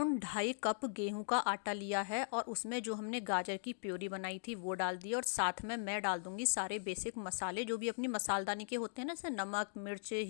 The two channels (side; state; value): right; silent; digital silence